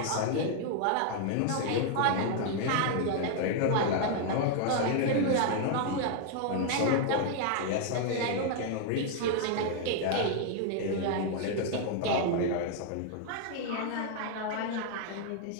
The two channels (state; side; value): different; both; correlation 0.00